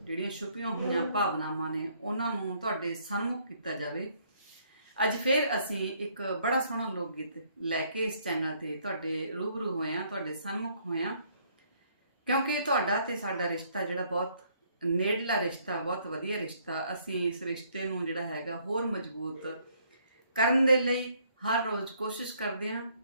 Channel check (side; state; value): both; inverted; correlation -0.66